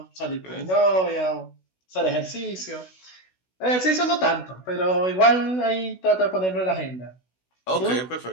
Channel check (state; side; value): late; right; 16 ms